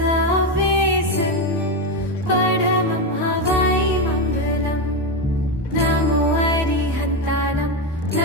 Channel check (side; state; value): both; normal; correlation 0.11